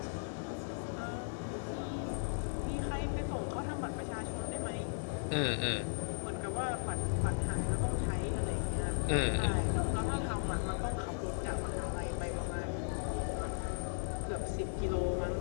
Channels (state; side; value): silent; right; 53 dB below the other